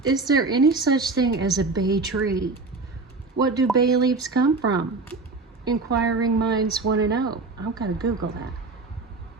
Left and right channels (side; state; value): left; quieter; 3.7 dB